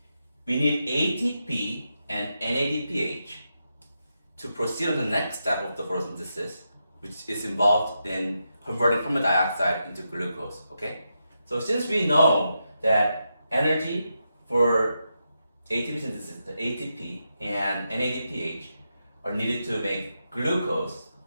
we need ATP and NADPH to proceed on the next step of the photosynthesis, which is involved in converting carbon dioxide into glucose, okay? So since we know that energy for ATP synthesis, the ATP and NADPH are needed to make glucose,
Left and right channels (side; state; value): both; inverted; correlation -0.86